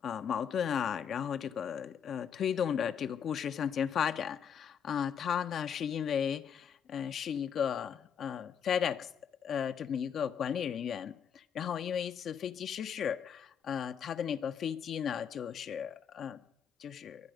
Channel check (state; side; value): quieter; right; 7.9 dB